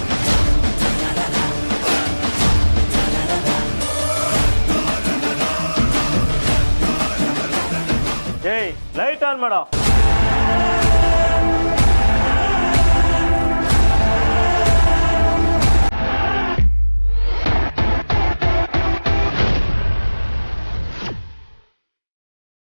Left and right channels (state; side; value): inverted; both; correlation -1.00